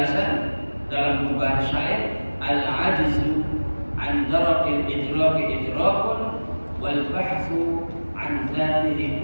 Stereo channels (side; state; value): both; inverted; correlation -1.00